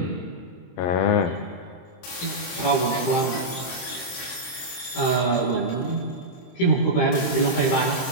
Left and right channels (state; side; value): late; right; 23 ms